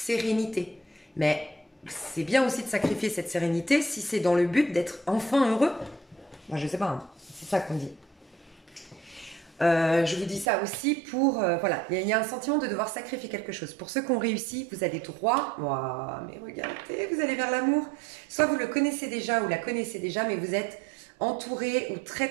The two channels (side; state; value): left; drops out; at 10.5 s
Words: mais c'est bien aussi de sacrifier cette sérénité si c'est dans le but d'être enfin heureux. Moi je sais pas, hein. C'est ça qu'on dit. Je vous dis ça aussi pour... voilà, il y a un sentiment de devoir sacrifier quelque chose. Pour ceux qui ont réussi, vous allez droit. Wow, mais regardez, vous allez vers l'amour. Soit vous le connaissez déjà ou la connaissez déjà, mais vous êtes entouré ou très